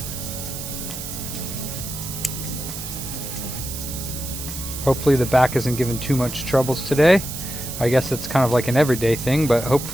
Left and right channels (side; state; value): right; noise; hiss, 8 dB below the sound